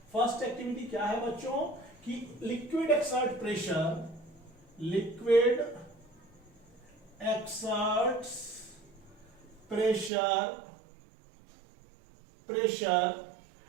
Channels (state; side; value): drops out; left; at 10.1 s